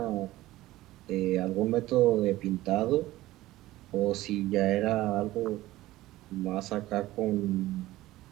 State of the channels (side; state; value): left; quieter; 16.6 dB